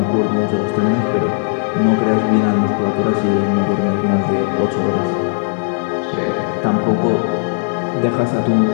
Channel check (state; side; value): silent; right; digital silence